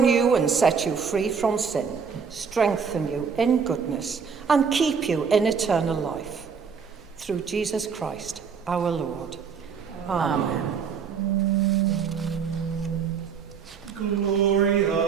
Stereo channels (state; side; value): quieter; left; 6.3 dB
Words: you and set you free from sin, strengthen you in goodness, and keep you in eternal life. Through Jesus Christ, our Lord. Amen.